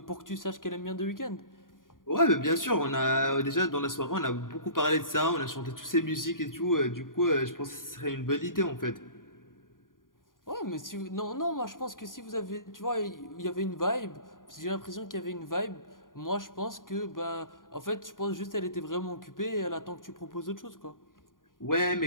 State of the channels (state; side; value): late; right; 0.90 ms